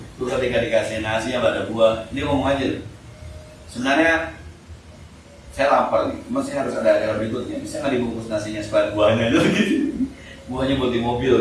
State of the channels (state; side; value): identical; both; correlation 1.00